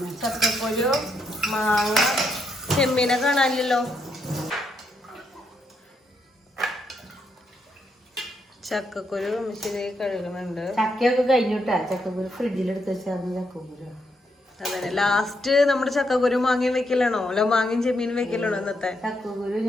ചക്കക്കുരു, മാങ്ങ, ചെമ്മീനെ കാണാനില്ലല്ലോ. ചക്കക്കുരു അമ്മിച്ചി കഴുകുന്നുണ്ട്. ചക്കയൊക്കെ കഴിഞ്ഞിട്ടാ ചക്കക്കുരു ഫ്രിഡ്ജിലെടുത്ത് വെച്ചാൽ ചക്കക്കുരു. അതെ, ലാസ്റ്റ് നമ്മുടെ ചക്കക്കുരു മാങ്ങയും വെക്കലാണോ? അല്ല മാങ്ങയും ചെമ്മീനും വെക്കലാണോ ഇന്നത്തെ? ചക്കക്കുരു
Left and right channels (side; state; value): both; normal; correlation 0.78